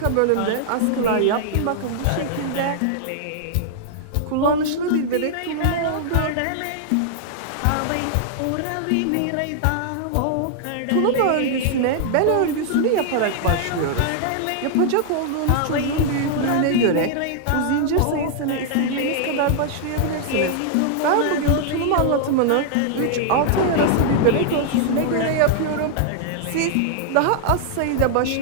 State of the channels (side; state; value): both; different; correlation -0.01